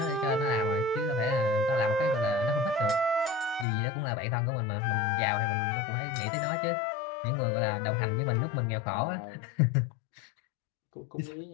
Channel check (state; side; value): drops out; right; at 3.7 s